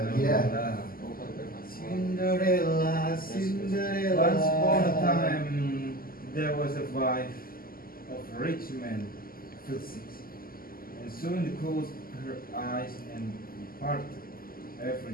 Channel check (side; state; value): right; late; 0.42 ms